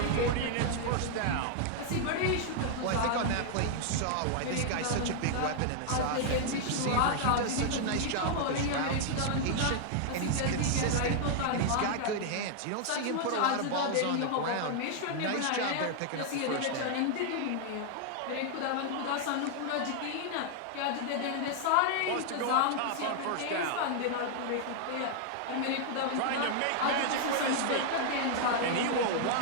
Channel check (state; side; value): different; both; correlation 0.00